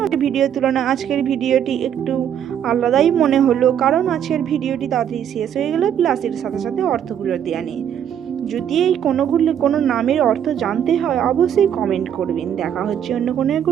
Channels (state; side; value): quieter; left; 9.4 dB